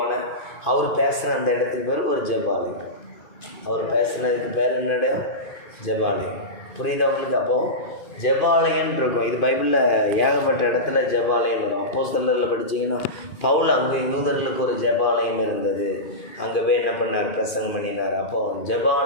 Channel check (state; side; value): late; right; 2.5 ms